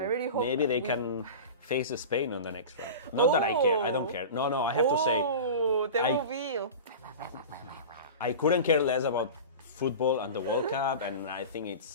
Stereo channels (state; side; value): inverted; both; correlation -0.31